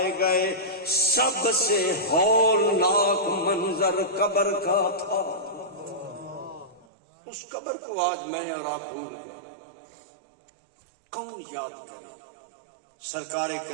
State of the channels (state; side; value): drops out; left; at 6.9 s